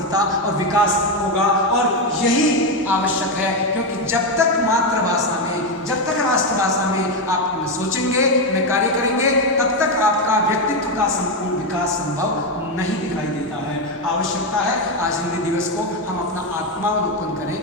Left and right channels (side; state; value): both; normal; correlation 0.08